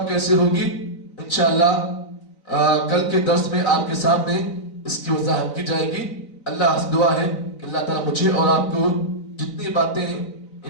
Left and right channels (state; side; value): late; right; 4.0 ms